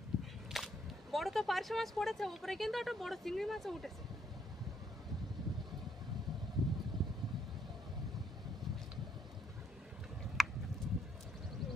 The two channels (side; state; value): both; normal; correlation 0.70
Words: বড় তো পার্শে মাছ পড়েছে, উপরে কিন্তু একটা বড় চিংড়ি মাছও উঠেছে।